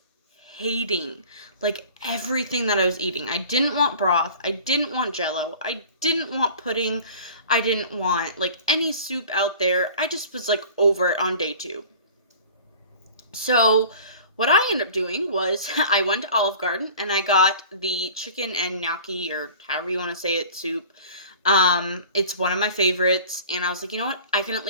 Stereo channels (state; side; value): inverted; both; correlation -0.43